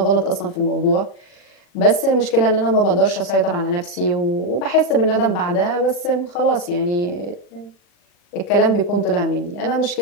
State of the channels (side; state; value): right; late; 40 ms